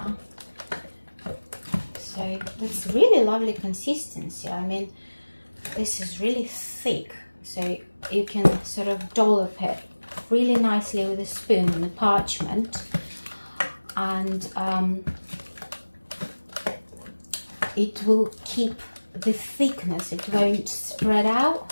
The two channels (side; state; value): both; inverted; correlation -1.00